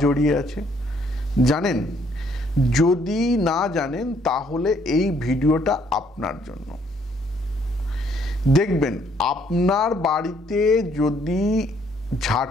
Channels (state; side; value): normal; both; correlation 0.66